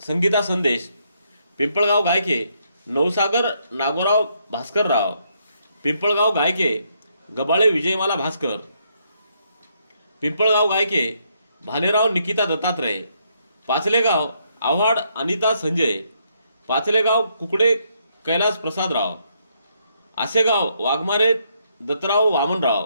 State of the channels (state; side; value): inverted; both; correlation -0.74